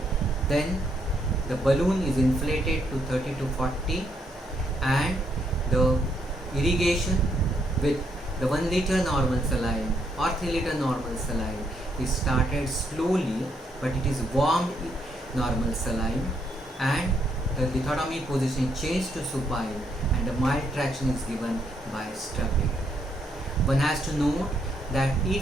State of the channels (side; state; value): both; normal; correlation 0.75